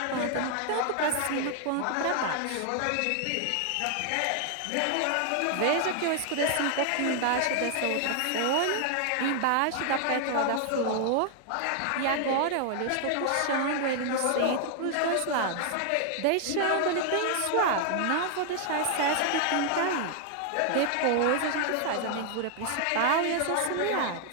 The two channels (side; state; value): both; different; correlation 0.00